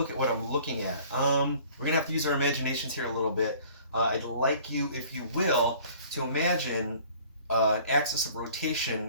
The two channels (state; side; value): inverted; both; correlation -0.51